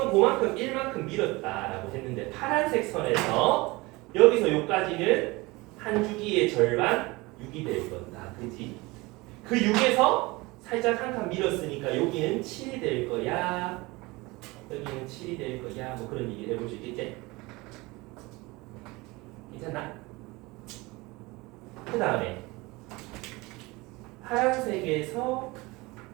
그만큼 1만큼 밀었다라고 했는데 파란색 선에서 여기서 여기까지는 한 주기의 절반 6이 될 거다. 그지? 그 6에서 살짝 한 칸 밀었으니까 여기는 7이 될 거야. 여기는 7이 될 거야. 뭐 그런 얘기를 해볼 수 있겠지? 괜찮나? 그 다음에 파란색에서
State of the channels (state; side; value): quieter; left; 23.0 dB